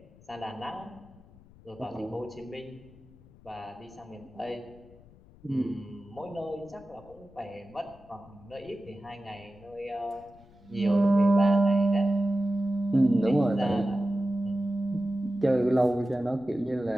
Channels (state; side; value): noise; left; rumble, 24 dB below the sound